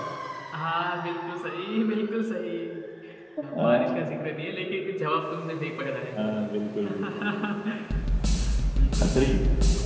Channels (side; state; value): both; identical; correlation 1.00